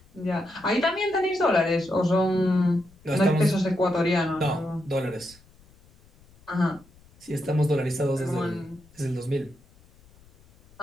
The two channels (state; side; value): noise; left; rumble, 28 dB below the sound